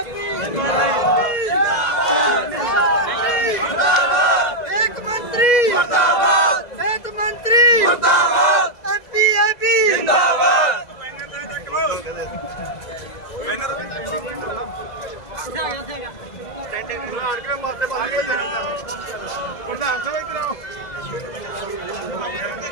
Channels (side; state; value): right; late; 2.0 ms